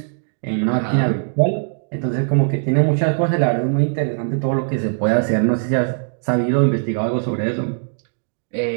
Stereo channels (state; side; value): silent; left; digital silence